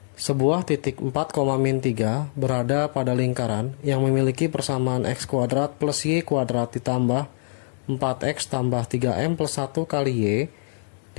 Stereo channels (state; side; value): silent; right; digital silence